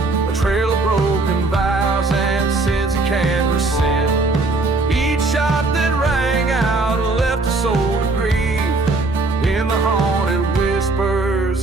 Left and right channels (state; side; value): quieter; left; 3.2 dB